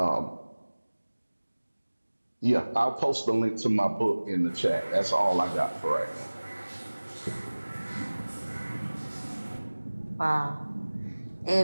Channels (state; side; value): inverted; both; correlation -1.00